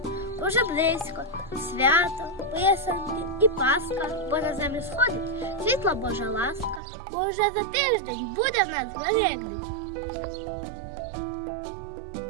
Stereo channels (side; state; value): left; drops out; at 6.8 s